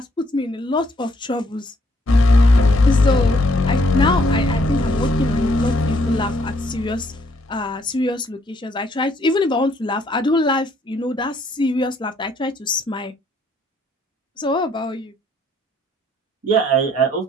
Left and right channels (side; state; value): both; normal; correlation 0.68